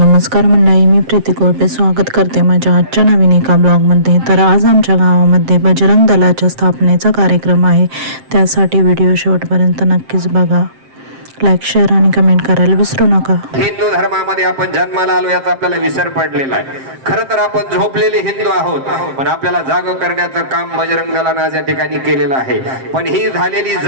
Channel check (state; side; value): late; left; 7.6 ms